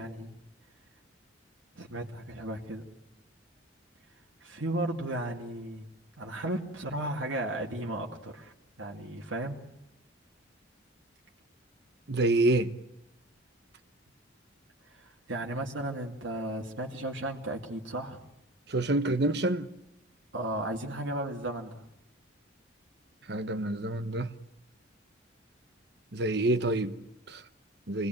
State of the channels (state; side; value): normal; both; correlation 0.37